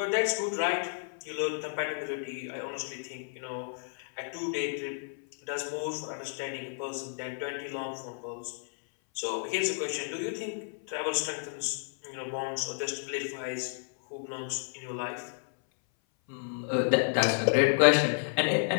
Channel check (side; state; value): right; silent; 57 dB below the other